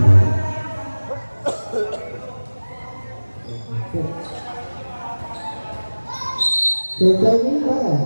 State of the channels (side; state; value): both; inverted; correlation -1.00